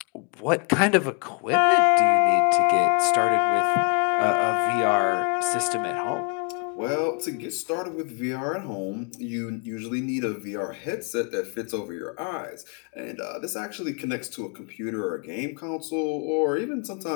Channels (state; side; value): quieter; right; 38.4 dB